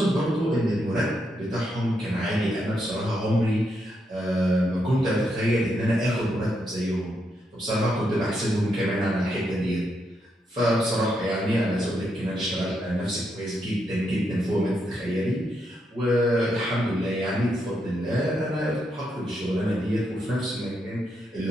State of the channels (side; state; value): both; normal; correlation 0.80